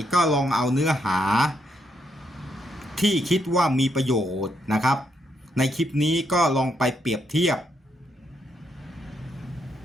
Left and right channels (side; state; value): both; normal; correlation 0.77